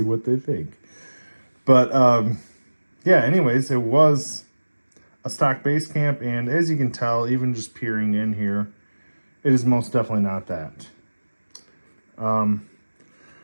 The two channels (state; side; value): inverted; both; correlation -1.00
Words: what they think. But yeah, anyways, it was a stock base camp, and as you can tell, even just peering in here, it is most definitely not that. I